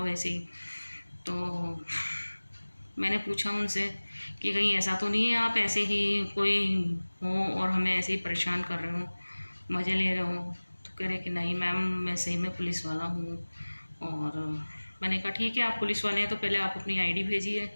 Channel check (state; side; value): inverted; both; correlation -1.00